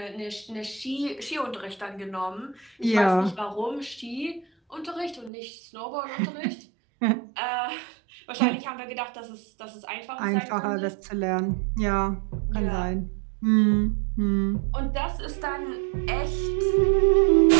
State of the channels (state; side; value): drops out; left; at 5.3 s